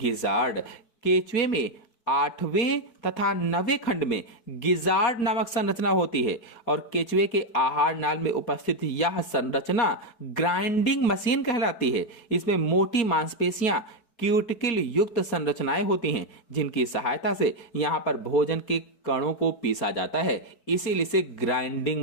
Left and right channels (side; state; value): right; late; 4.6 ms